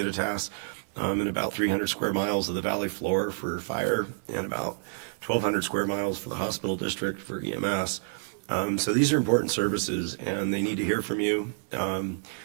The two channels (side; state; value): left; silent; digital silence